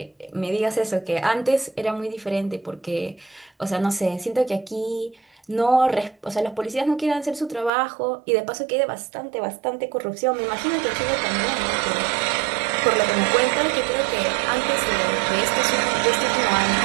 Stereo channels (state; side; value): drops out; left; at 7.7 s